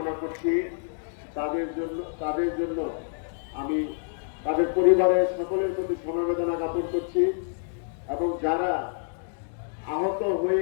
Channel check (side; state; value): right; silent; digital silence